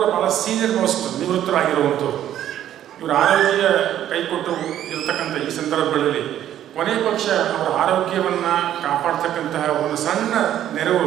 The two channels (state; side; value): quieter; left; 11.4 dB